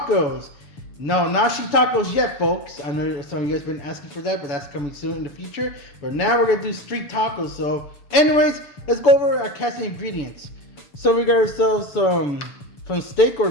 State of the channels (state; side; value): late; right; 7.0 ms